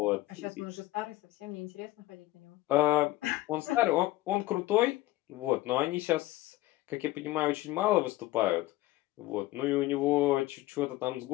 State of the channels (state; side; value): quieter; right; 17.2 dB